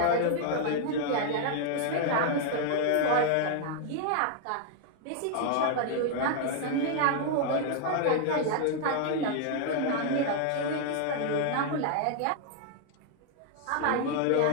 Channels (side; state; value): both; different; correlation 0.00